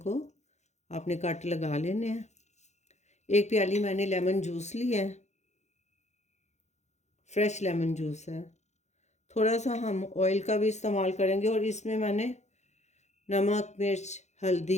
आपने कट लगा लेने हैं। एक प्याली मैंने लेमन जूस लिया है, फ्रेश लेमन जूस है। थोड़ा सा हम ऑयल का भी इस्तेमाल करेंगे और इसमें मैंने नमक, मिर्च,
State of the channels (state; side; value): late; right; 0.33 ms